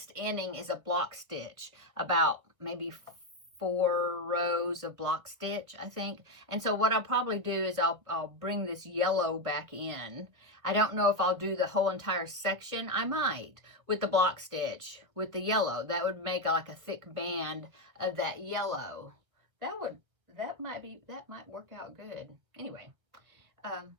inning is a block stitch, about maybe 4 rows of block stitch, I think. And so what I'll probably do is I'll bring this yellow back in. I don't know if I'll do the whole entire section. I might, with the block stitch, with the yellow. That would make like a thick band of that yellow. that might work out good. Anyway,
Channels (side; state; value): left; late; 1.6 ms